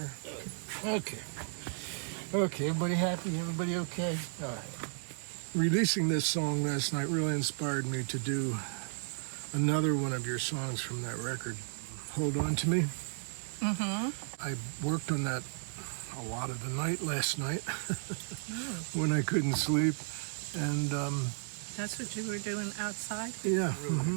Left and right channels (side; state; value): left; silent; digital silence